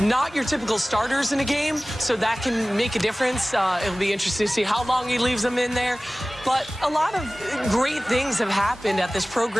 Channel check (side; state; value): both; normal; correlation 0.98